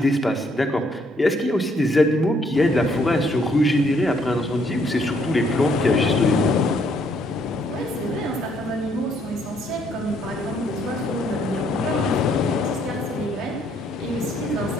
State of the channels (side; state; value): both; normal; correlation 0.69